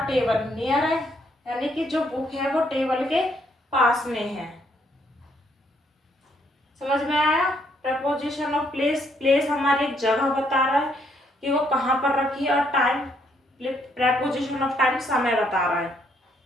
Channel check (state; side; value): normal; both; correlation 0.71